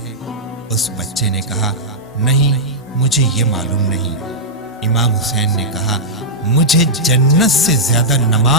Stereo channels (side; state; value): both; normal; correlation -0.09